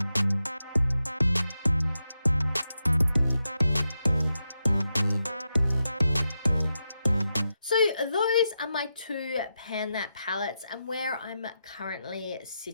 So those are my two Pan That palettes and where I'm currently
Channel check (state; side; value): inverted; both; correlation -0.87